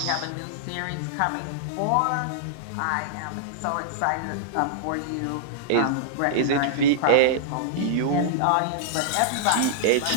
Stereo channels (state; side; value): different; both; correlation -0.02